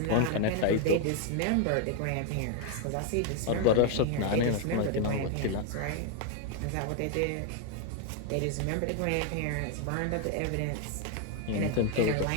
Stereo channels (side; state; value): both; different; correlation 0.01